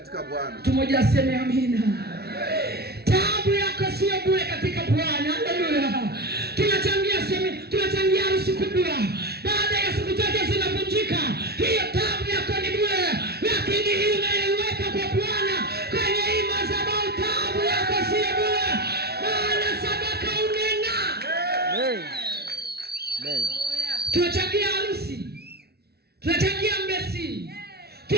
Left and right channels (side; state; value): left; late; 0.46 ms